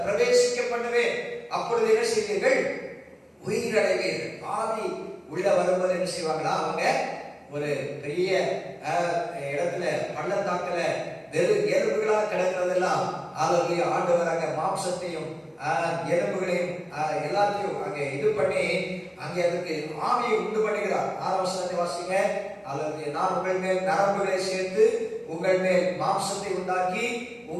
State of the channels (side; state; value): both; identical; correlation 1.00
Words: பிரவேசிக்க பண்ணுவேன், அப்பொழுது என்ன செய்வீர்கள்? உயிரடைவீர்கள். ஆவி உள்ள வரும்போது என்ன செய்வாங்களா? அவங்க ஒரு பெரிய இடத்துல பள்ளத்தாக்குல வெறும் எலும்புகளா கிடக்கிறதெல்லாம் அல்லேலூயா ஆண்டவர் அங்க மாம்சத்தையும் எலும்புகளையும் எல்லாத்தையும் அங்கே இது பண்ணி அங்கே அதுக்கு ஆவியை உண்டு பண்ணுகிறார். 6 வசனத்தை வாசிங்க. அல்லேலூயா. நான் உங்கள் மேல் நரம்புகளை சேர்த்து உங்கள் மேல் மாம்சத்தை உண்டாக்கி